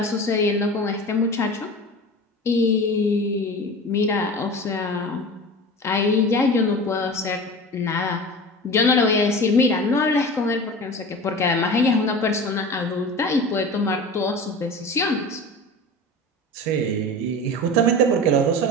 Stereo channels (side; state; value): both; normal; correlation 0.34